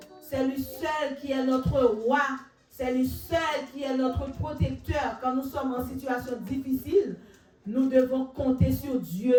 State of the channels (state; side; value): identical; both; correlation 1.00